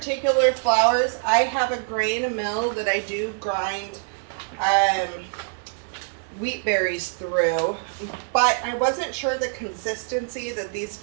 flours, I have a grain mill that I do grind wheat berries through, but I wasn't sure the consistency that these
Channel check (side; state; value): left; silent; 62 dB below the other